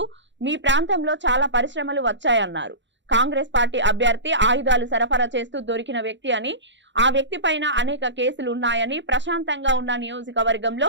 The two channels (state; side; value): late; left; 0.53 ms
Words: మీ ప్రాంతంలో చాలా పరిశ్రమలు వచ్చాయన్నారు. కాంగ్రెస్ పార్టీ అభ్యర్థి ఆయుధాలు సరఫరా చేస్తూ దొరికిన వ్యక్తి అని, ఆ వ్యక్తి పైన అనేక కేసులు ఉన్నాయని, ప్రశాంతంగా ఉన్న నియోజకవర్గంలో